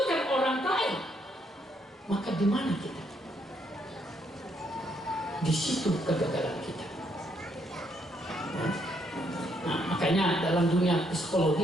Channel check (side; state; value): both; normal; correlation 0.73